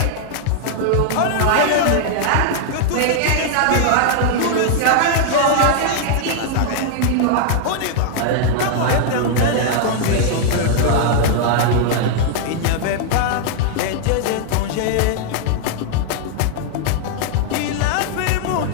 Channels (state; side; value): different; both; correlation -0.01